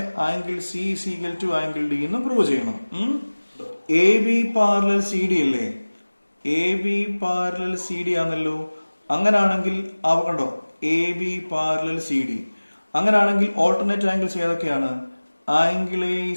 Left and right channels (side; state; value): both; inverted; correlation -1.00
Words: angle C is equal to angle D എന്ന് പ്രൂവ് ചെയ്യണം. A B parallel C D അല്ലേ? A B parallel C D ആണല്ലോ. അങ്ങനാണെങ്കിൽ കണ്ടോ, A B parallel C D. അങ്ങനാണെങ്കിൽ ഓൾട്ടർനേറ്റ് ആംഗിൾസ് ഏതൊക്കെയാണ്? Angle A